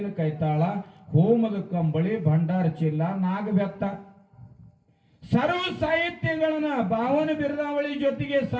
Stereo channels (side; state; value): both; identical; correlation 1.00